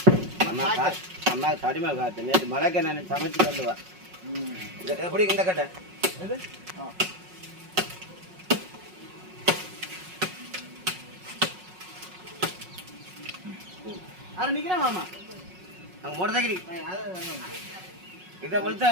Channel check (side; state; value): left; late; 5.4 ms